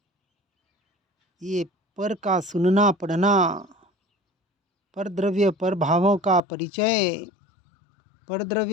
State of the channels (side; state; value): right; drops out; at 6.4 s